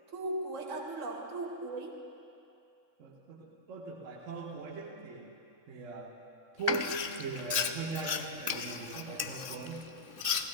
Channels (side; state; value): left; late; 3.6 ms